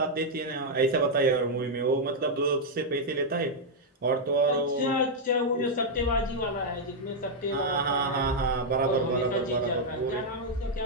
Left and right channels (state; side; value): normal; both; correlation -0.02